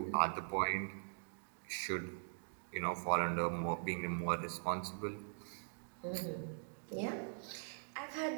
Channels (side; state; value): left; silent; digital silence